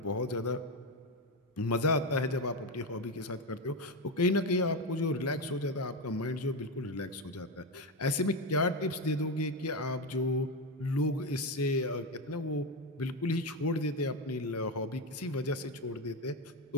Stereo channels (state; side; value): normal; both; correlation 0.12